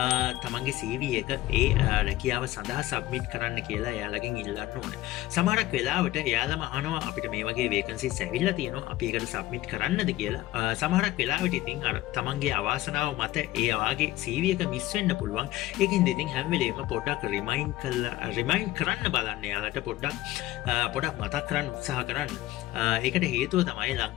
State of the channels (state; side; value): quieter; right; 16.5 dB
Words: තමන්ගේ CV එක ඒ රැකියාව සඳහා සබ්මිට් කරන්න කියලා එයාලගෙන් ඉල්ලන්න ඕනේ. සමහරක් වෙලාවට එයාලම අහනවා අපිට මේ වගේ වේකන්සිස් ඇවිල්ලා තියෙනවා. අපි ඒකට සබ්මිට් කරන්නද කියලා. සමහරක් වෙලාවට ඉතින් අර තමන්ගේ අවාසනාව මත ඒ වාගේ CV එක මිස් වෙන්න පුළුවන්. ඒකින්ද ඉතින් හැම වෙලේම පොඩ්ඩක් රිමයින්ඩ් කරන්න බලන්න යාලට පොඩ්ඩක් මතක් කරන්න උත්සාහ කරන්න. ඒකට හේතුව තමයි